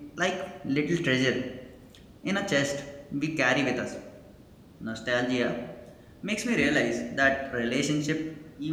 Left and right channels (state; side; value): identical; both; correlation 1.00